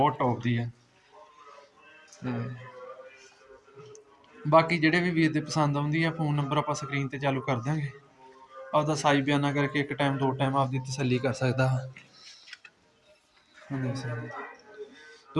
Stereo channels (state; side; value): identical; both; correlation 1.00